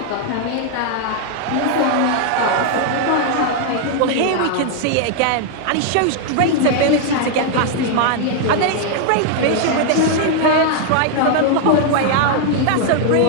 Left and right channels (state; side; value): different; both; correlation 0.00